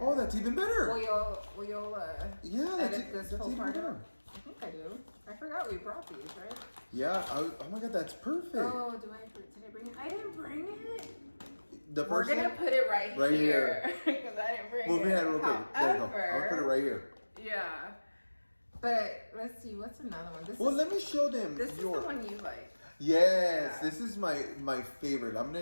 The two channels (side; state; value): both; inverted; correlation -1.00